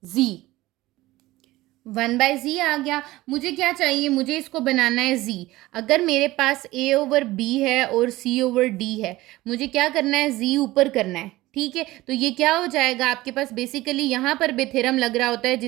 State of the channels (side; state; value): left; quieter; 18.1 dB